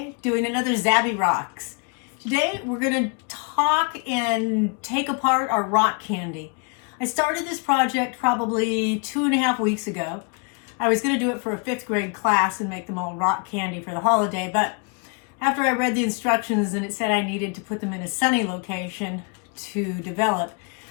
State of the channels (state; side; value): quieter; right; 35.7 dB